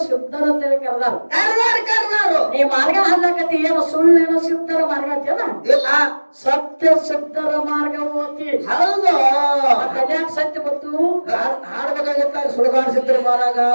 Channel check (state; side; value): inverted; both; correlation -1.00